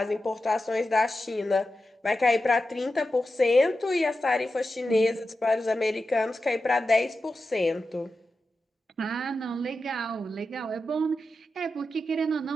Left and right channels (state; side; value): normal; both; correlation 0.91